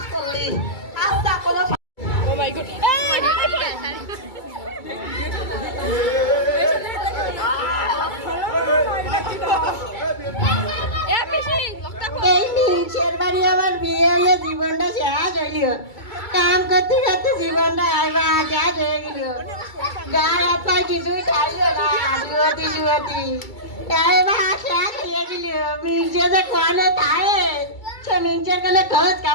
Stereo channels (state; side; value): late; right; 2.3 ms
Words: করলি আস্তা কোনো ও মাই গড এই মিনসের বাড়ি আমার বিয়ে হয়ে জীবনটা শেষ হইল কাম করতে করতে জীবনটা আবার শেষ হয়ে গেল গায়ে হাত পায়ে কিছুই খাইল না জুয়াতি জুয়াতি এবার শেষ হয়ে গেল মিনসে যে কোনে থাকে সে মিনসের কোনে খোঁজ